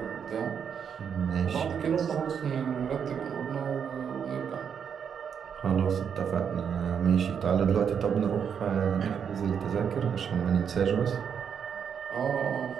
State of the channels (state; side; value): quieter; left; 7.4 dB